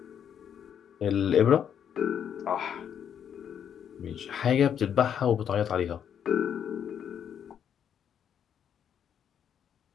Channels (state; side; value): quieter; right; 8.6 dB